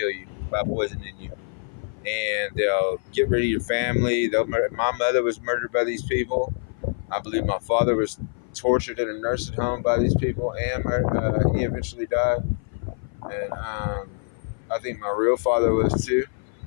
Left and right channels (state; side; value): silent; right; 55 dB below the other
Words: you by poisoning you. and they'll get rid of your family. My mother was murdered by these people. I believe my father was tortured in a nursing home by these people, and he eventually died. And I think my real father was too.